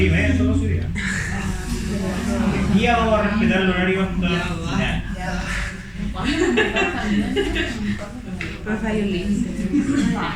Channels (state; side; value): identical; both; correlation 1.00